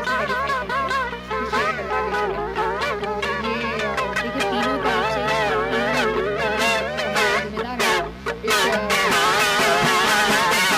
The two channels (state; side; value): identical; both; correlation 1.00